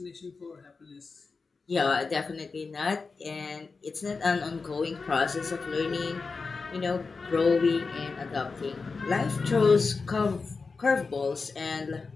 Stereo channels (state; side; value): quieter; right; 4.4 dB